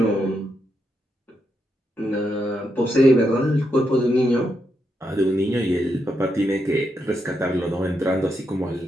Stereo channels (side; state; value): both; normal; correlation 0.82